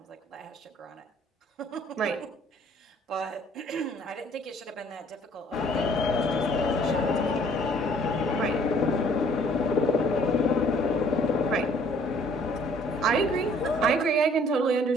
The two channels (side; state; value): both; normal; correlation 0.58